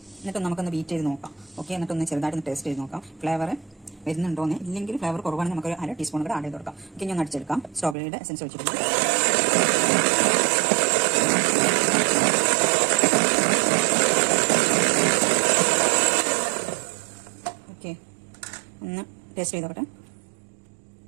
എന്നിട്ട് നമുക്കൊന്ന് ബീറ്റ് ചെയ്ത് നോക്കാം. ഓക്കെ, എന്നിട്ടൊന്ന് ചെറുതായിട്ടൊന്ന് ടേസ്റ്റ് ചെയ്ത് നോക്കാം ഫ്ലേവർ വരുന്നുണ്ടോന്ന്. ഇല്ലെങ്കിൽ ഫ്ലേവർ കുറവാണെങ്കിൽ നമുക്കൊരു 1/2 ടീസ്പൂൺ കൂടെ ആഡ് ചെയ്ത് കൊടുക്കാം. ഓക്കെ, ഞാൻ അടിച്ചെടുക്കാം. സ്ട്രോബെറിയുടെ എസൻസ് ഒഴിച്ചിട്ടുണ്ട്. ഒന്ന് ടേസ്റ്റ് ചെയ്തോട്ടെ.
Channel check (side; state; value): left; drops out; at 8.0 s